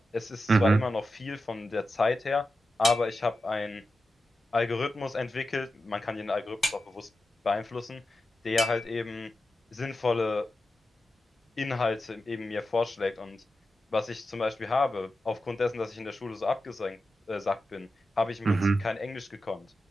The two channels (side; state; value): both; normal; correlation 0.91